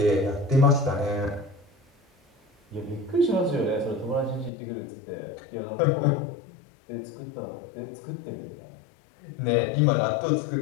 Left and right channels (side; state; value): right; drops out; at 4.5 s